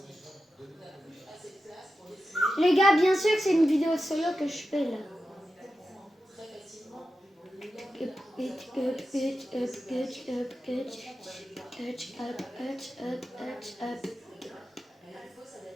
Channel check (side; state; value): both; normal; correlation 0.91